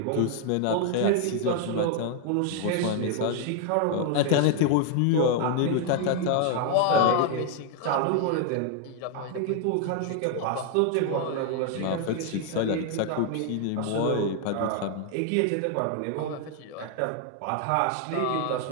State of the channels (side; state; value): both; different; correlation 0.00